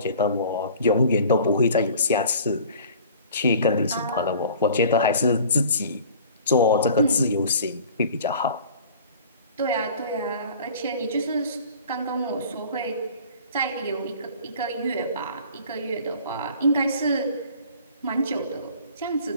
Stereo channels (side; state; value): both; inverted; correlation -0.46